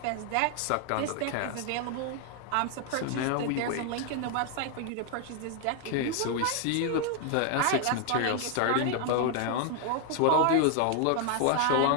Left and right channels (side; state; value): both; different; correlation 0.00